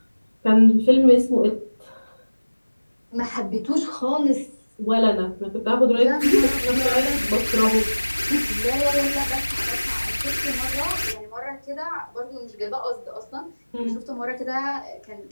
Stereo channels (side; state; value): both; inverted; correlation -1.00